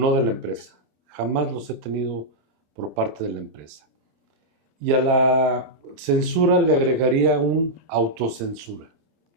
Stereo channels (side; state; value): left; late; 27 ms